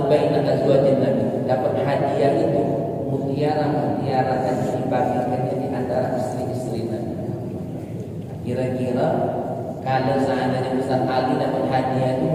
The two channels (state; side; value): identical; both; correlation 1.00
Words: baina azwajin Nabi. Dapat hadiah itu mutiara dan dibagikannya di antara istri-istri Nabi. Kira-kira kalau seandainya Ustaz Ali dapat hadiah itu